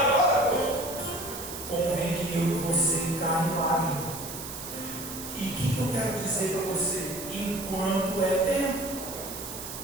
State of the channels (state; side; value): noise; right; hiss, 9 dB below the sound